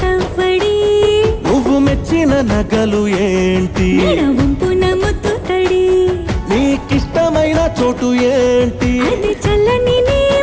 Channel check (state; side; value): identical; both; correlation 1.00